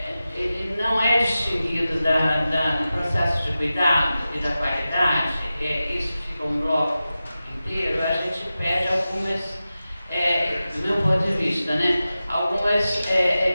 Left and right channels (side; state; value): both; inverted; correlation -0.94